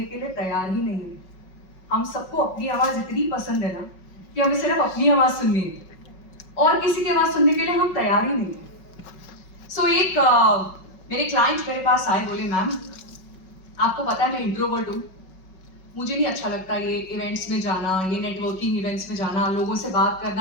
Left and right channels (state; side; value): late; right; 5.4 ms